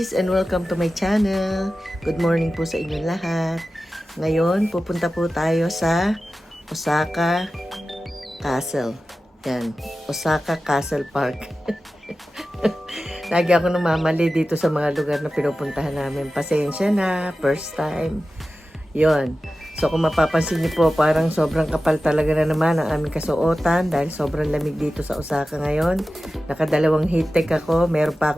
and welcome to my channel. Good morning po sa inyong lahat. Ngayon, pupunta po tayo sa Osaka Castle. Yan, Osaka Castle Park. Lagi ako namamali dito sa mga lugar na pinupuntahan namin. Pasensya na, first time. Yon. So kung mapapansin niyo po, parang sobrang kapal talaga na naman ang aming kasuotan dahil sobrang lamig dito sa Osaka ngayon. Nakadalawang heat tech ako. Meron pa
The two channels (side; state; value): both; normal; correlation 0.94